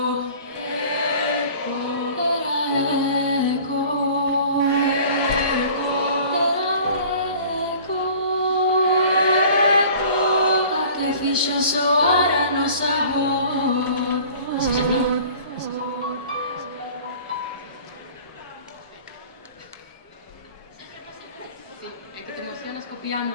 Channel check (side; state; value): both; inverted; correlation -0.46